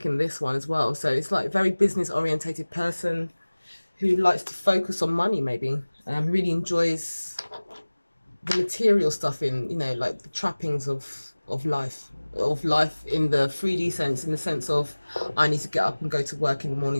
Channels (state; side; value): inverted; both; correlation -1.00